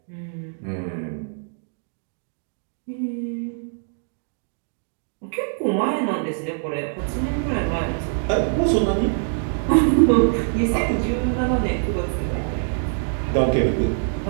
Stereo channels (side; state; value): left; silent; digital silence